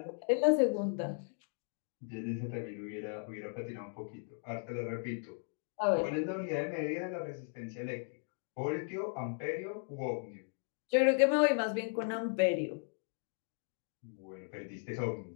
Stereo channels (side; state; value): right; silent; 53 dB below the other